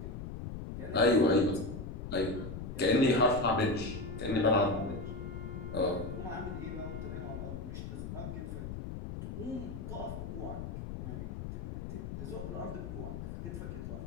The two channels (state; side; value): noise; left; rumble, 7 dB below the sound